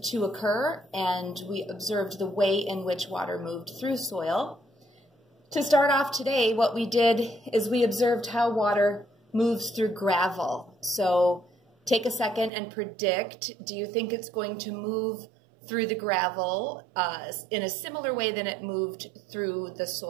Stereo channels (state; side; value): drops out; left; at 12.5 s